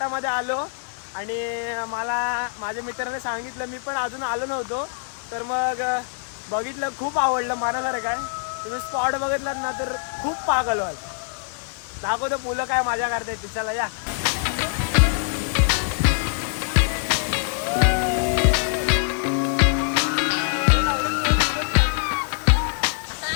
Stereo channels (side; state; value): right; silent; digital silence